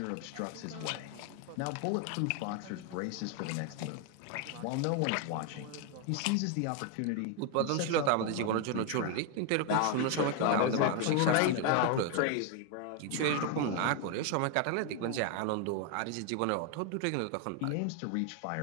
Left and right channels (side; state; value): both; different; correlation 0.01